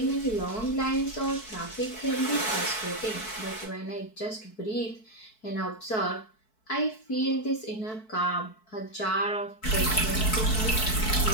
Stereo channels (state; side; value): late; right; 4.6 ms